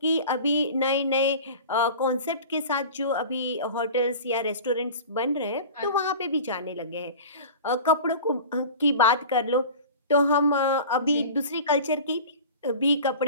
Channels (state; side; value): inverted; both; correlation -0.37